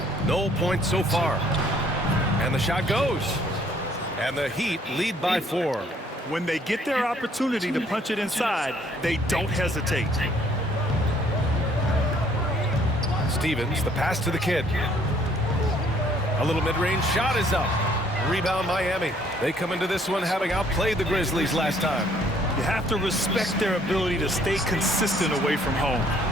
No points so far. And the shot goes. And the Heat lead by 4. When they get their opportunity to punch it inside, they don't hesitate. Stevens, the pass to the kid. A little mid-range shot is up. Rebound Miami. They come into this one having outplayed the Grizzlies last time. You have to respect their ability to stay consistent away from home,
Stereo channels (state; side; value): normal; both; correlation 0.62